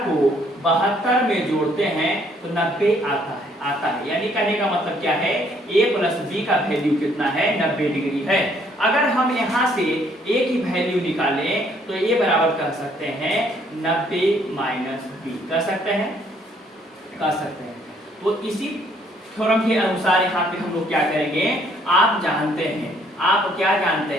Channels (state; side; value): normal; both; correlation 0.65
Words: को 72 में जोड़ते हैं तो 90 आता है। यानी कहने का मतलब क्या है, a प्लस b का वैल्यू कितना है, 90 डिग्री है। अगर हम यहाँ से a की वैल्यू निकालें तो a बराबर कह सकते हैं 90 माइनस b, कह सकते हैं। तो इसी थ्योरम के अनुसार यहाँ पे हम लोग क्या करेंगे, आप क्या जानते